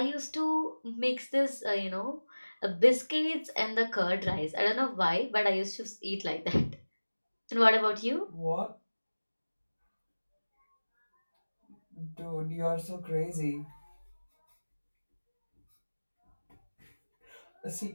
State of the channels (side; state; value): both; inverted; correlation -1.00